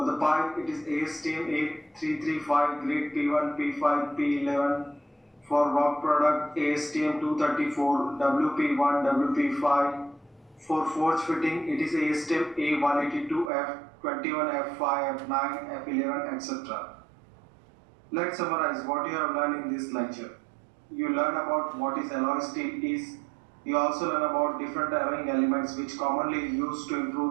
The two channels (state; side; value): drops out; left; at 13.5 s